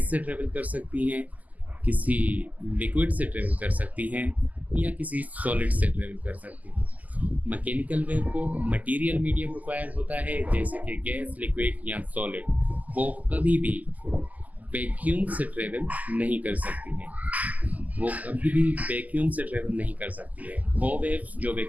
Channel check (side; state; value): left; late; 0.078 ms